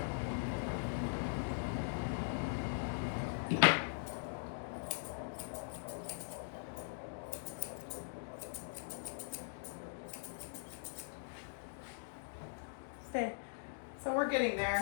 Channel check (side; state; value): right; silent; digital silence